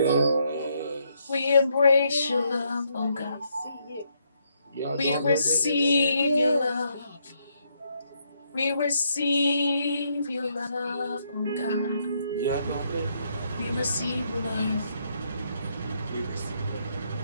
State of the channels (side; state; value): both; inverted; correlation -0.75